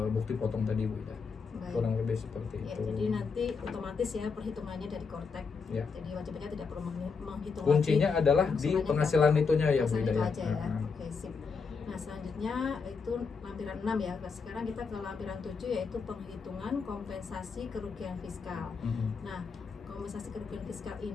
bukti potong tadi Bu Ida. Kurang lebih seperti itu. Jadi nanti otomatis ya perhitungannya dari Kortek. Jadi wajib pajak tidak perlu menghitung. Kuncinya adalah di penghasilan itunya ya Bu Ida ya. Oke, sip. Nah, selanjutnya itu lampiran 6 ya. Sekarang kita ke lampiran 7 yaitu penghitungan kompensasi kerugian fiskal. Nah, kompensasi kerugian fiskal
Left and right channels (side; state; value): right; quieter; 5.2 dB